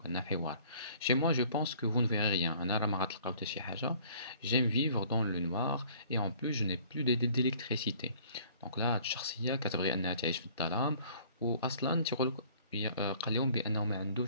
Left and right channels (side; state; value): both; inverted; correlation -0.54